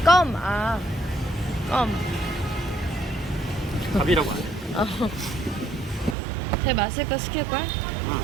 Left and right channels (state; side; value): drops out; left; at 6.2 s